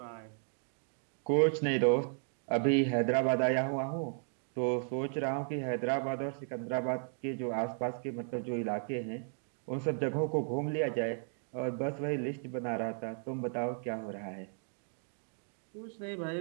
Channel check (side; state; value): left; silent; 55 dB below the other